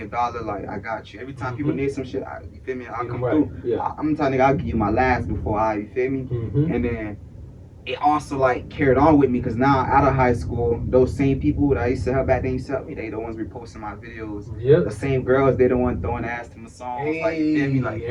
$1, like I got you. Every time people need some shit, you feel me? I'll come through. Yeah. I'm the type nigga, I'll give you my last before you feel me? And then it also like carried on with me because now out of high school, those same people that I used to help back then used to help me. They the ones reposting my videos. The same girls, they the ones throwing ass to my songs. Hey, like you feel me? Like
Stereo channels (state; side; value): identical; both; correlation 1.00